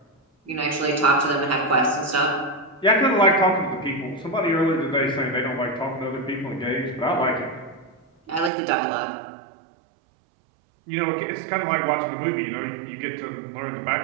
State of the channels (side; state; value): left; drops out; at 8.5 s